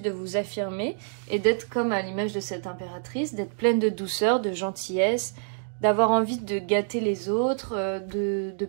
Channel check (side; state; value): left; silent; digital silence